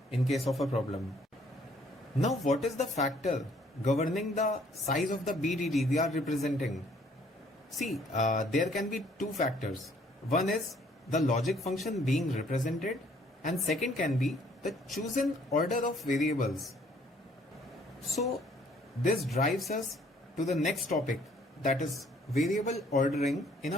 in case of a problem. Now, what is the factor governing the size of the BDD we are representing? See, there can be two factors. One is the logic function being represented, and second can be the chosen order of variables. So, this drives us to the next topic, that is variable ordering in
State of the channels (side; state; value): both; normal; correlation 0.62